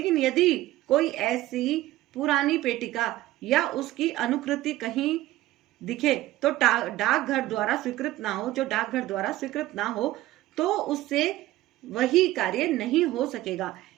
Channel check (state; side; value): quieter; left; 16.0 dB